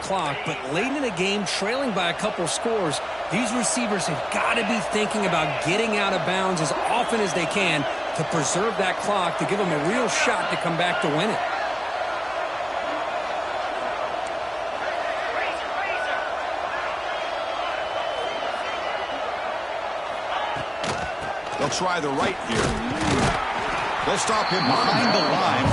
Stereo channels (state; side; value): identical; both; correlation 1.00